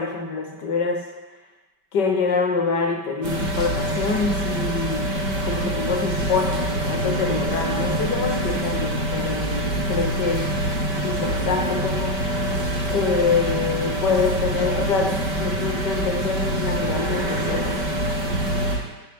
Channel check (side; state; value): right; late; 5.2 ms